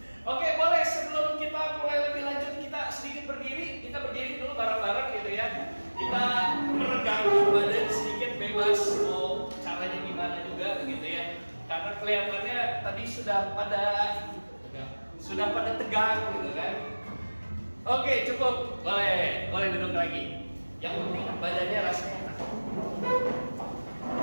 Oke, boleh sebelum kita mulai lebih lanjut kita sedikit berdiri. Kita berdiri dulu bareng-bareng gitu ya. Kita meregangkan badan sedikit, bebas mau caranya gimana juga gitu ya. Karena kelihatannya tadi sudah pada tegang gitu kan. Oke, cukup. Boleh duduk lagi. Yang penting badannya rasanya enak.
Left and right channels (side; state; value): both; inverted; correlation -1.00